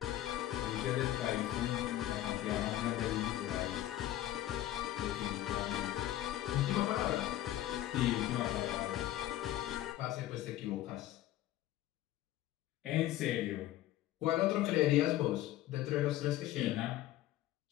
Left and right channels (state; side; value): quieter; right; 14.0 dB